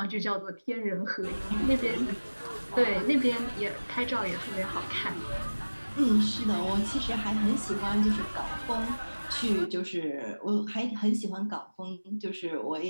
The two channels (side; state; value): both; inverted; correlation -1.00